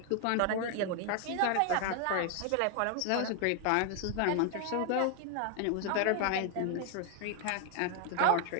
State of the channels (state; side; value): different; both; correlation 0.00